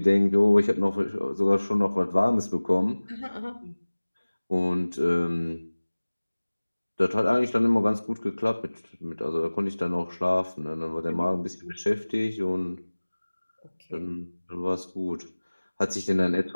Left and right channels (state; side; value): inverted; both; correlation -1.00